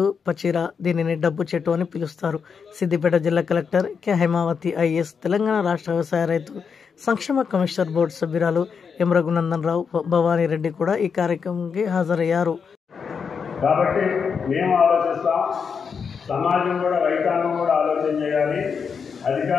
పచీరా, దీనిని డబ్బు చెట్టు అని పిలుస్తారు. సిద్దిపేట జిల్లా collector K Haimavathi IAS, Telangana రాష్ట్ర వ్యవసాయ రైతు సంక్షేమ కమిషనర్ బోర్డు సభ్యురాలు ఎం రఘునందన్ రావు, భవానీ రెడ్డి కూడా ఈ కార్యక్రమానికి హాజరయ్యారు. కాబట్టి మేము ఆలోచిస్తాం, సమాజం కూడా, రైతాంగం కూడా ఆలోచన చేయాలి,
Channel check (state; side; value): quieter; right; 6.1 dB